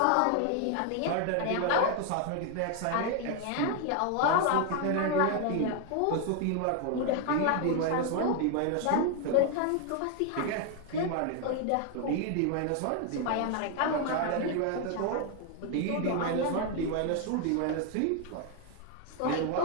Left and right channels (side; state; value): both; different; correlation 0.00